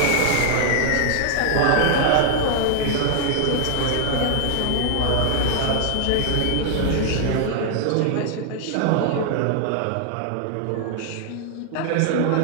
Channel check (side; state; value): both; different; correlation 0.00